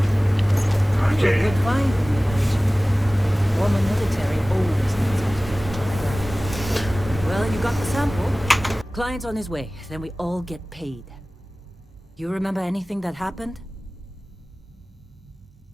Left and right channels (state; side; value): normal; both; correlation 0.98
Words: Okay. Good find. Former military always knows how to get the job done. Well, you got the sample. Client's on his way. Then we all get paid. You remember anything that happened?